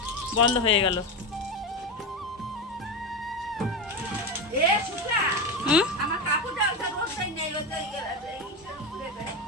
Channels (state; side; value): normal; both; correlation 0.17